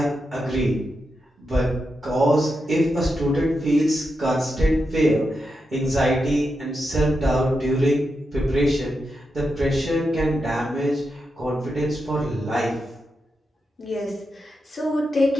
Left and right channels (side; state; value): both; normal; correlation 0.87